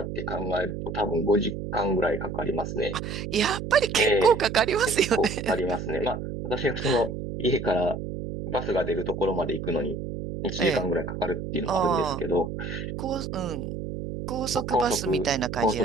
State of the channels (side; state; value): right; noise; hum, 6 dB below the sound